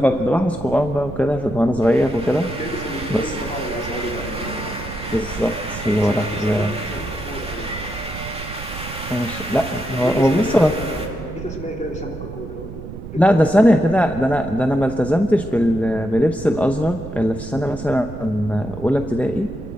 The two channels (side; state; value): right; noise; rumble, 11 dB below the sound